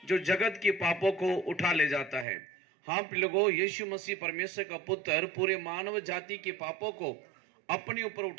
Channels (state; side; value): drops out; left; at 2.2 s